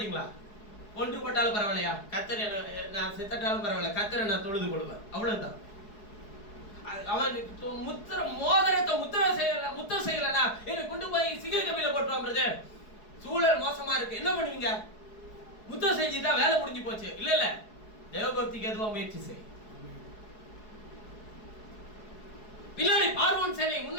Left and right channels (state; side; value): late; right; 4.7 ms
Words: கொண்டு போட்டாலும் பரவாயில்லையா, கர்த்தரை நான் செத்தாலும் பரவாயில்ல, கர்த்தரை நான் தொழுது கொள்வேன், அவ்வளவுதான். அவன் மோதிரத்தை முத்திர செய்யலனா என்ன கொண்டு போய் சிங்க கபில போட்டுவான் பிரதர். சூழல் மோசமா இருக்கு, என்ன பண்ணுவீங்க? முத்திர செஞ்சுட்டா வேலை முடிஞ்சு போச்சு. இல்ல இல்ல, தேவ பக்திக்கு எதுவா முயற்சி செய். பின்னாடி பார்வோன் சேனை,